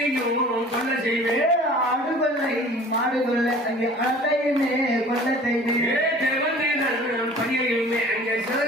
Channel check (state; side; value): normal; both; correlation 0.46